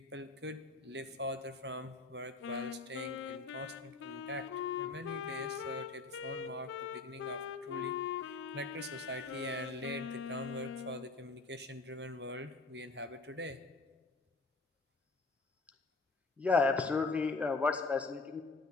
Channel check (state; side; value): quieter; right; 3.8 dB